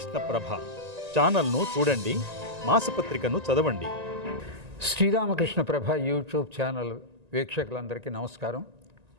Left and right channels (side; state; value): left; late; 1.9 ms